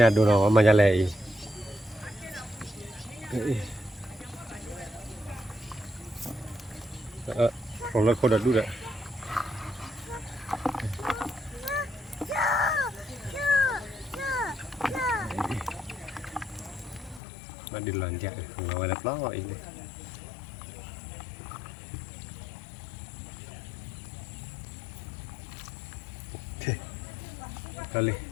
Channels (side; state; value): right; drops out; at 17.2 s